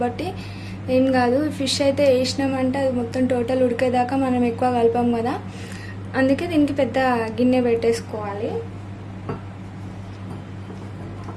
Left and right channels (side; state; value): both; identical; correlation 1.00